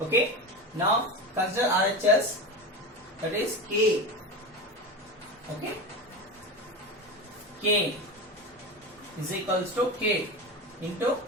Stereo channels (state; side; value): normal; both; correlation 0.24